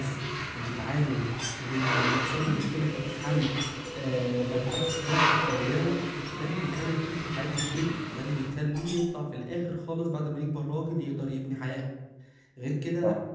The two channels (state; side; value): identical; both; correlation 1.00